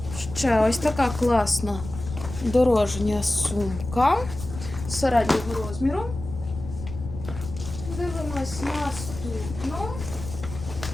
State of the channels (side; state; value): left; noise; rumble, 10 dB below the sound